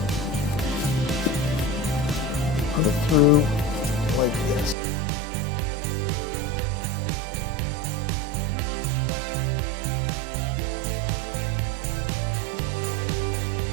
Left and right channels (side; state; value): left; drops out; at 4.8 s